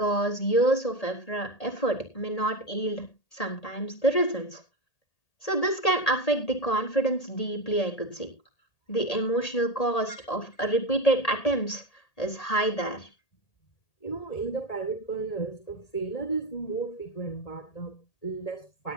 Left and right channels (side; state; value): right; late; 1.8 ms